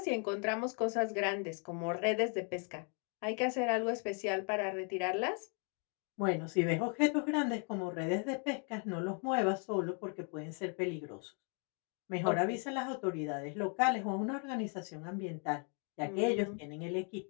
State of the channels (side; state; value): right; quieter; 39.6 dB